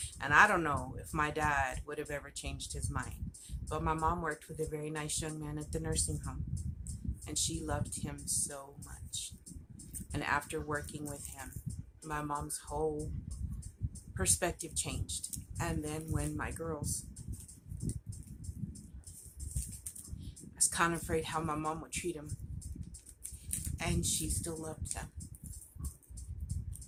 And I don't know if my dad would have ever changed his mind. But my mom worked with a very nice young man at the nursing home. And she loved him so much. And after working with him, my mom's whole perspective changed. And then when my girls, I was kind of afraid how my mom would treat him. And she still loved them.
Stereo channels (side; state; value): both; identical; correlation 1.00